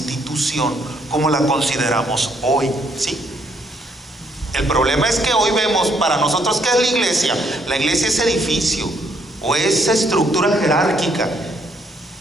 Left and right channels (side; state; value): both; normal; correlation 0.69